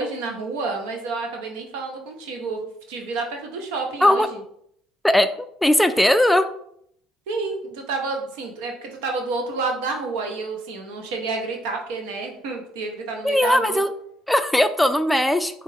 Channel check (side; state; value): both; normal; correlation 0.80